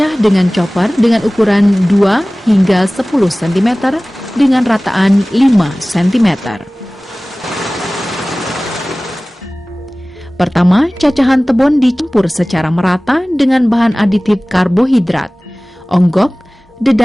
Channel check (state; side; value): normal; both; correlation 0.98